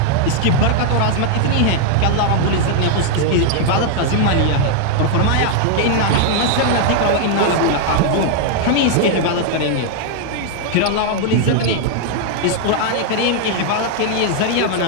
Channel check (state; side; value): different; both; correlation 0.00